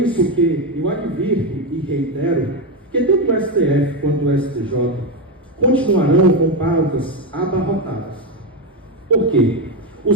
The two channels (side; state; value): both; normal; correlation 0.10